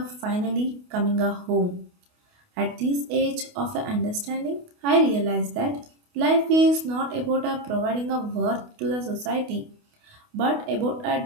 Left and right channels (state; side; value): late; left; 28 ms